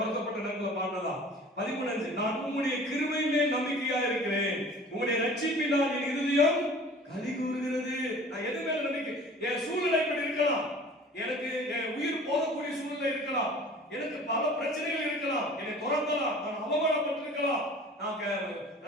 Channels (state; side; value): normal; both; correlation 0.44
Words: நேரத்தில் பாடுறதா. 13:5 நான் உம்முடைய கிருபை மேல் நம்பிக்கையா இருக்கிறேன், உம்முடைய ரட்சிப்பினால் என் இருதயம் களி கூறுகிறது. நான் எது மேல நம்பிக்கை? என் சூழ்நிலை இப்படி இருக்கலாம், எனக்கு என் உயிர் போகக்கூடிய சூழ்நிலை இருக்கலாம், எனக்கு பல பிரச்சனைகள் இருக்கலாம், என்னை துரத்தலாம், நான் அவமானப்பட்டிருக்கலாம், நான்